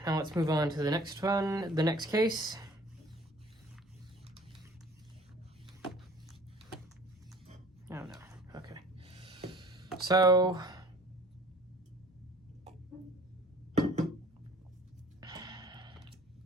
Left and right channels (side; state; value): both; normal; correlation 0.51